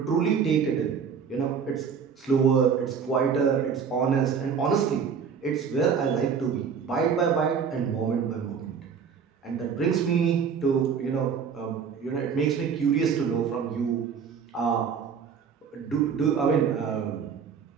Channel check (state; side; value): quieter; left; 6.6 dB